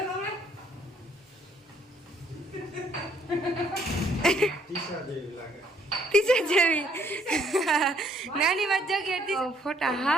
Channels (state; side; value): normal; both; correlation 0.65